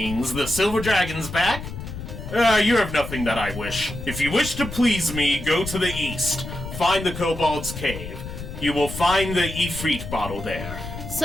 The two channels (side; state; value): left; noise; rumble, 9 dB below the sound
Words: The silver dragon's back. You have nothing that I wish. If you wish to please me, go to the east. Find the kobold's cave. You will find the Ifrit bottle there.